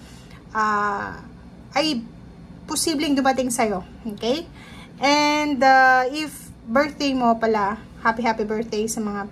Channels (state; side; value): identical; both; correlation 1.00